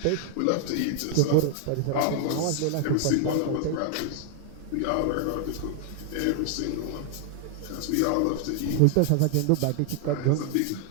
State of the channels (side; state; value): both; different; correlation -0.01